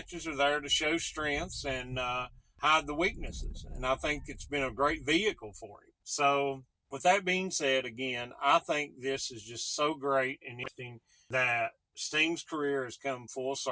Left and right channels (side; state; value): both; identical; correlation 1.00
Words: are there to show strengths and hide the weaknesses. And I think it's been a great vehicle for him. So with that being said, again, I think this is just so great and interesting that Sting's career has come full